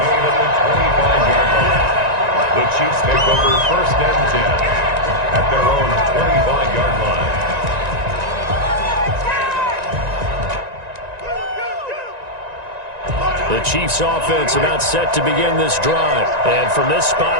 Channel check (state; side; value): late; left; 1.9 ms